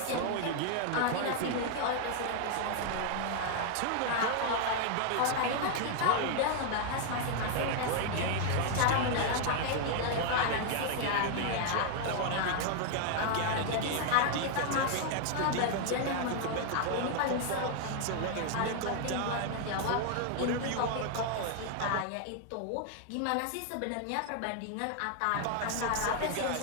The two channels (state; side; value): different; both; correlation 0.00